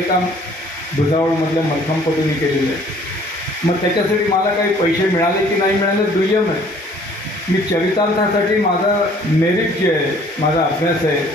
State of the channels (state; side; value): normal; both; correlation 0.56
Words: काम भुसावळमधल्या मलखांबपटूंनी केलेलं आहे. मग त्याच्यासाठी मला काही पैसे मिळाले की नाही मिळाले दुय्यम आहे. मी चरितार्थासाठी माझं मेरिट जे आहे, माझा अभ्यास आहे,